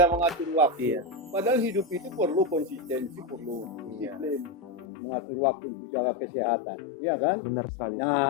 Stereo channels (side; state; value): right; drops out; at 4.9 s